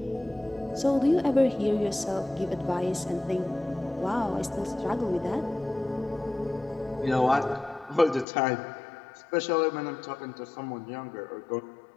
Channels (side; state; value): right; drops out; at 8.2 s